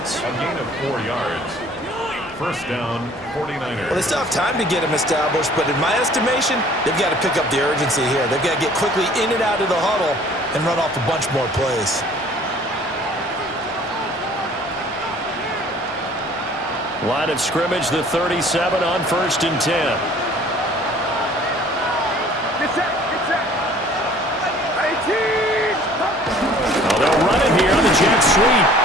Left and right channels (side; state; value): both; normal; correlation 0.53